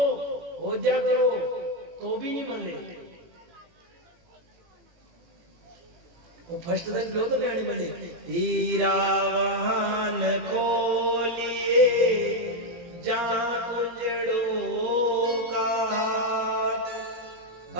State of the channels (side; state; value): left; late; 18 ms